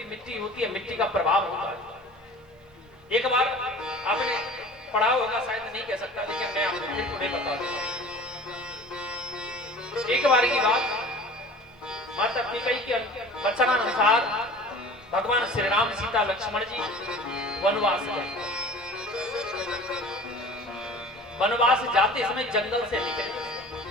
मिट्टी होती है, मिट्टी का प्रभाव होता है। एक बार आपने पढ़ा होगा, शायद नहीं कह सकता, लेकिन मैं आपको फिर थोड़े बता दूंगा। एक बार की बात, माता कैकेयी के वचनानुसार भगवान श्री राम सीता लक्ष्मण जी वनवास गए। वनवास जाते समय जंगल से निकले।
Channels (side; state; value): both; normal; correlation 0.42